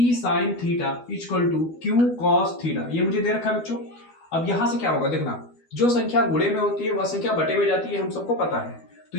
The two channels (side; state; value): right; late; 12 ms